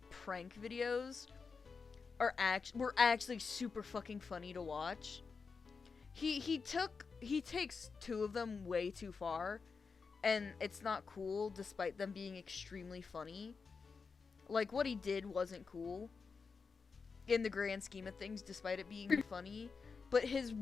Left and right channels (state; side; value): quieter; right; 5.0 dB